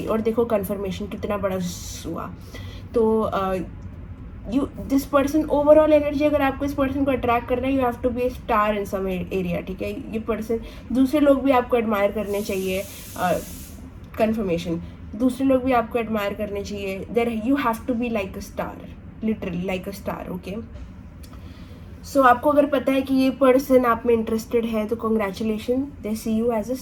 और देखो कन्फर्मेशन कितना बड़ा हुआ। तो दिस पर्सन, ओवरऑल एनर्जी अगर आपको इस पर्सन को अट्रैक्ट करना है, you have to be a star in some area, ठीक है। ये पर्सन, दूसरे लोग भी आपको एडमायर करने चाहिए। कन्फर्मेशन, दूसरे लोग भी आपको एडमायर करने चाहिए। There you have to be like a star, literally like a star, okay. So आपको अगर पता है कि ये पर्सन आप में इंटरेस्टेड है, तो congratulation, they see you as a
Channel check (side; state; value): both; identical; correlation 1.00